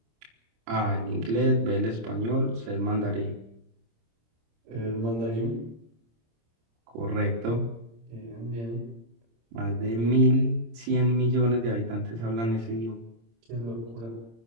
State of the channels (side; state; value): left; late; 26 ms